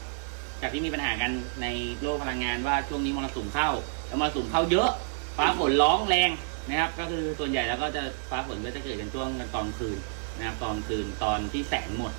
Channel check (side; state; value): left; silent; digital silence